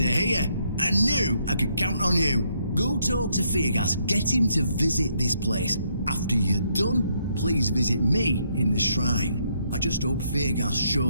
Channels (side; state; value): both; inverted; correlation -0.73